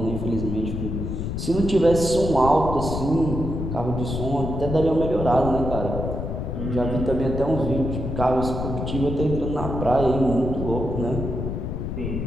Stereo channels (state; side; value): noise; left; rumble, 4 dB below the sound